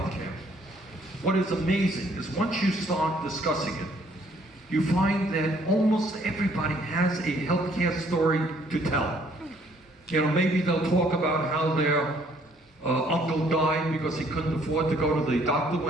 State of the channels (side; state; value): both; normal; correlation 0.63